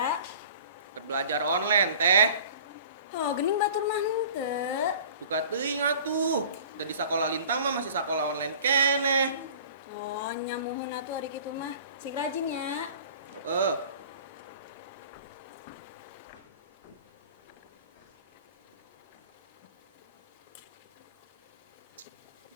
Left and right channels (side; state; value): both; inverted; correlation -0.45